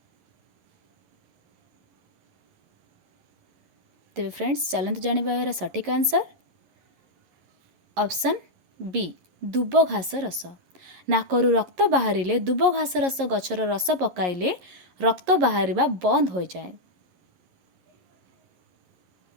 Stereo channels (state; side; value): late; left; 11 ms